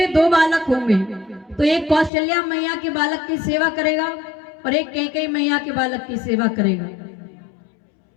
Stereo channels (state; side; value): drops out; right; at 2.1 s